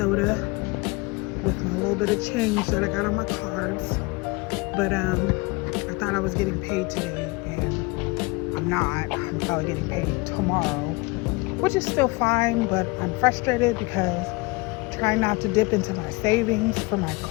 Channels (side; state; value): right; quieter; 25.7 dB